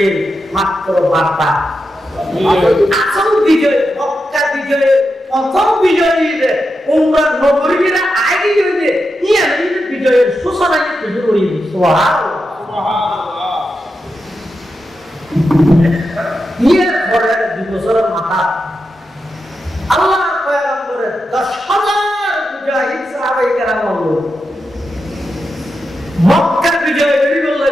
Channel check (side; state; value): both; normal; correlation 0.88